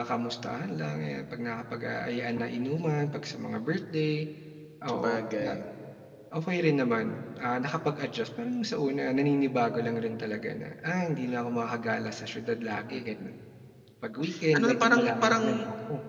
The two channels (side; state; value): both; identical; correlation 1.00